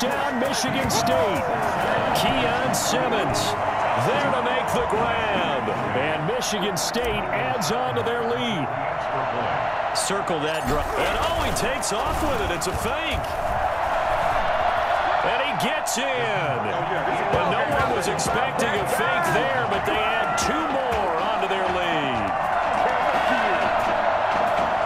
Michigan State. Keon Simmons there to make the grab. And Michigan State adds on to their lead. Circle that drive. And he takes off with it. It's a fake. And he gets in. And no one was expecting a fake there, but they add 2 more onto their lead.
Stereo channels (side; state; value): both; identical; correlation 1.00